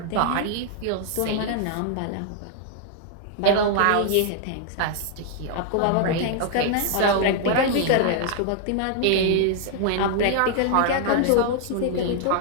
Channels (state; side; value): different; both; correlation 0.00